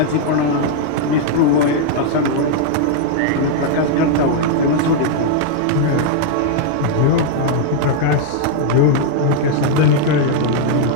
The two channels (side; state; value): both; different; correlation 0.00